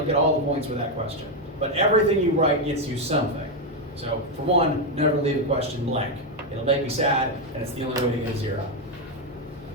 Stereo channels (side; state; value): both; normal; correlation 0.05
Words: get all the points for that question. But everything you write gets you something. So for one, never leave a question blank. It'll make me sad, and it's the only way to get a 0.